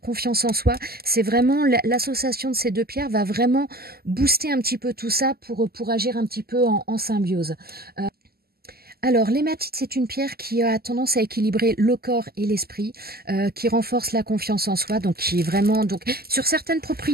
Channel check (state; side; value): late; left; 0.45 ms